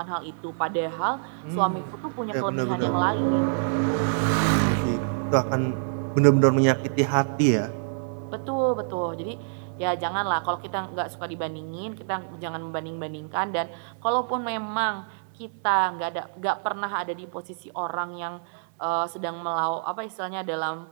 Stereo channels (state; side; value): silent; left; 61 dB below the other